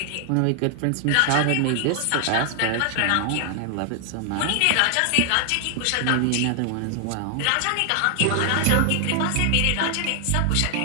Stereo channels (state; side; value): different; both; correlation 0.00